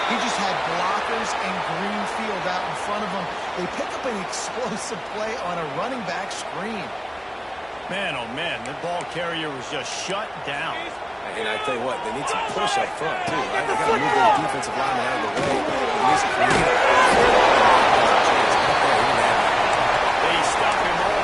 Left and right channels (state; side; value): identical; both; correlation 1.00